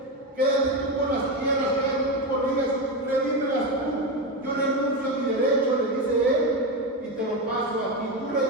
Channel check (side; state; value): both; normal; correlation 0.14